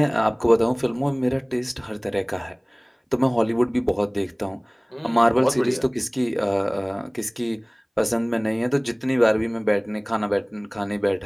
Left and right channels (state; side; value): identical; both; correlation 1.00